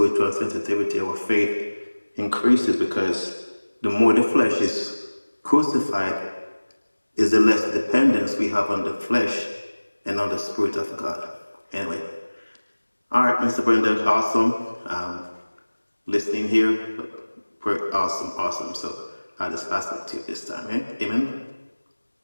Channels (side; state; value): both; inverted; correlation -1.00